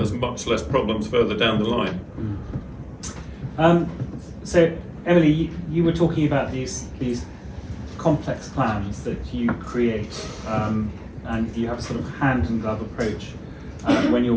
much less problems further down the line. So Emily, you were talking about these complex plans that you create, and you have a sort of hand and glove approach when you're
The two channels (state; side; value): identical; both; correlation 1.00